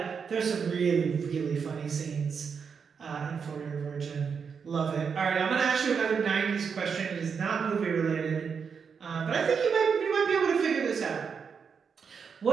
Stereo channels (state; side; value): quieter; left; 6.2 dB